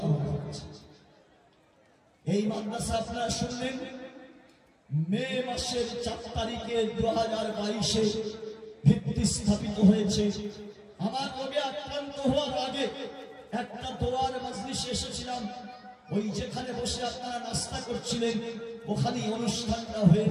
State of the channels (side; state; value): both; identical; correlation 1.00